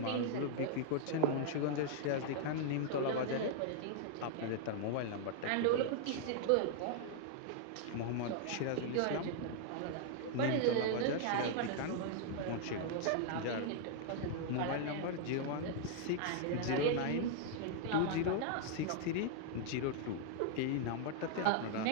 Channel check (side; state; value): both; different; correlation -0.01